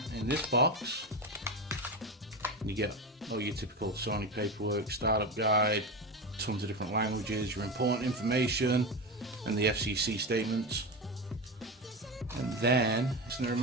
in this box, you get all your typical Sony paperwork, startup guide, tons of different languages, your important information, and the FCC statements. And then, in the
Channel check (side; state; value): both; normal; correlation 0.20